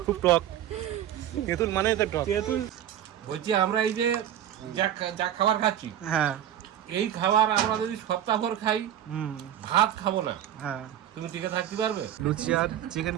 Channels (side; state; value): left; quieter; 11.0 dB